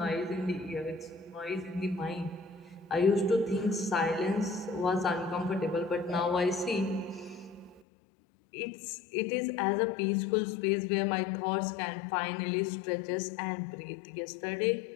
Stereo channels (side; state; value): right; drops out; at 7.9 s